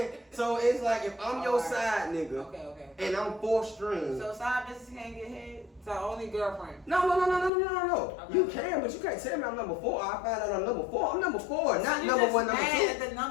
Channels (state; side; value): drops out; right; at 7.5 s